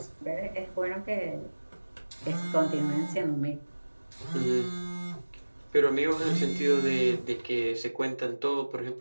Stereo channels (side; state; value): both; inverted; correlation -1.00